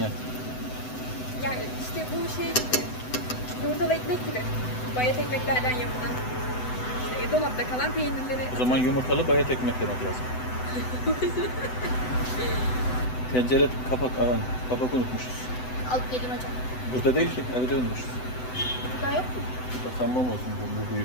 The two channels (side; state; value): right; late; 7.9 ms